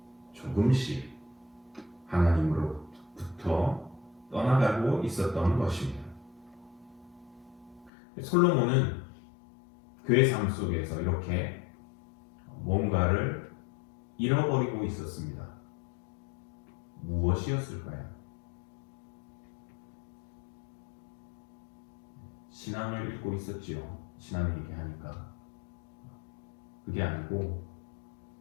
조금씩 하나님으로부터 떠나가고 있었던 것입니다. 솔로몬은 그의 삶 속에서 이렇게 뭔가를 잃어버리고 있었습니다. 무엇이었을까요? 신앙을 잃고 있었지요. 신앙 얘기하니까. 그게 아니고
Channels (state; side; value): drops out; right; at 7.9 s